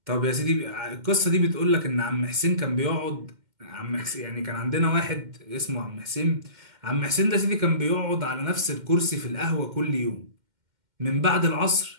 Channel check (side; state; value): left; late; 2.1 ms